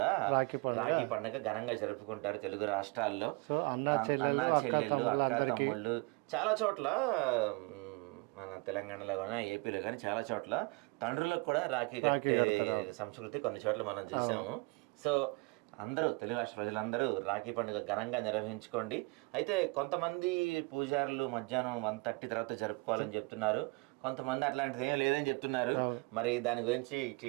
రాఖీ పండుగ ఘనంగా జరుపుకుంటారు తెలుగు రాష్ట్రాల్లో. అన్నా చెల్లెళ్ళు, అక్క తమ్ముళ్ళు చాలా చోట్ల, మన తెలంగాణలో కానీ ఏపీలో కానీ చాలా చోట్ల తండ్రులకు కూడా రాఖీ కట్టే సంస్కృతి కొన్ని చోట్ల మనం చూసాము. సో అందరూ తెలుగు రాష్ట్ర ప్రజలందరూ రాఖీ పండుగ ఘనంగా నిర్వహించుకోండి. అయితే కొంతమంది పూజారులు మధ్యాహ్నం 1:30 తర్వాత జరుపుకోవాలని చెప్తున్నారు, కొంతమంది అట్లాంటిది ఏం లేదని చెప్తున్నారు. మరి దాని గురించి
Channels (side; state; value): left; quieter; 27.8 dB